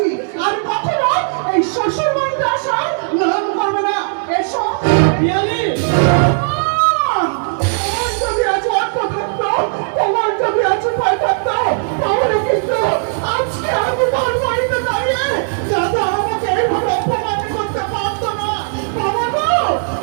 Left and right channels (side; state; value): left; silent; 65 dB below the other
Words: আর কখনো এই শ্বশুর বাড়িতে আসার নাম করবে না। এসো বিয়ালি তোমার যদি আজ অর্থ থাকতো, তোমার যদি আজ উপায় থাকতো, তাহলে কিন্তু আজকে